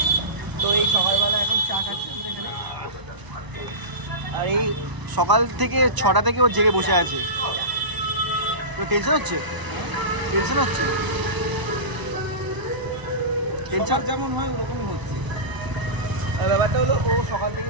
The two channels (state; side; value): late; left; 1.0 ms